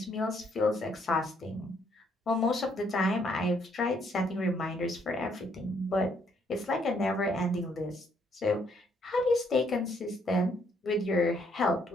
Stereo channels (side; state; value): both; normal; correlation 0.70